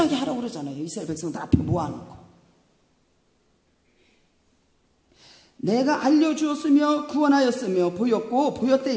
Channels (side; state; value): both; identical; correlation 1.00